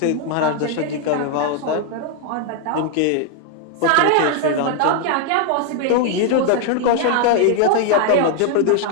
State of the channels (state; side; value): different; both; correlation 0.00